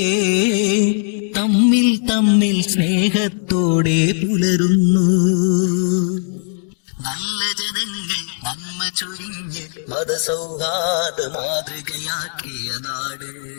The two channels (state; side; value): silent; right; digital silence